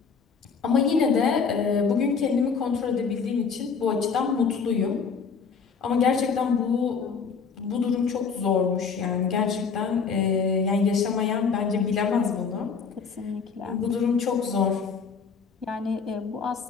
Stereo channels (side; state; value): right; quieter; 5.6 dB